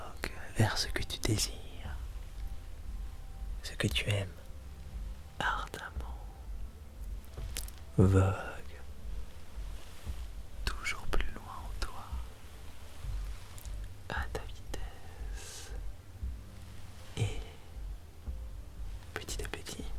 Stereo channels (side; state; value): both; identical; correlation 1.00